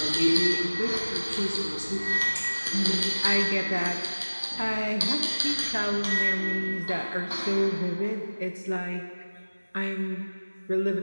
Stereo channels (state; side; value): inverted; both; correlation -1.00